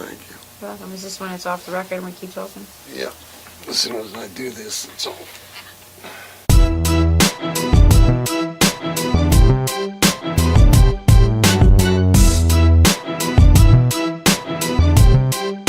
you. You're welcome. Is this when it's off the record and we keep talking? Yeah. As soon as I do this, it's all.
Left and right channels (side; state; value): both; identical; correlation 1.00